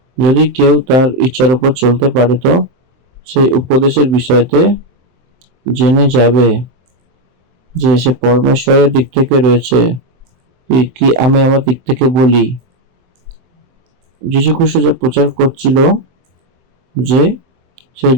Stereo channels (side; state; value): left; late; 23 ms